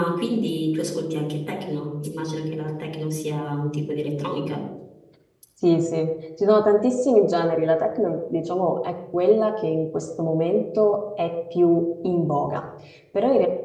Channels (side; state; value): both; identical; correlation 1.00